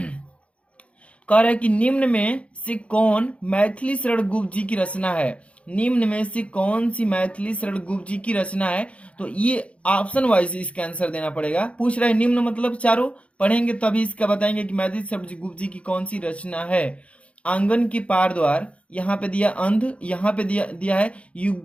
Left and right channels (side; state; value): right; late; 0.062 ms